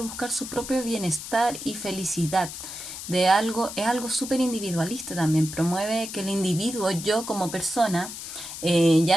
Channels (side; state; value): left; noise; hiss, 9 dB below the sound